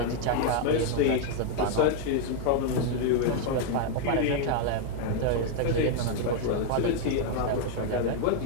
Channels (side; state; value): both; different; correlation 0.00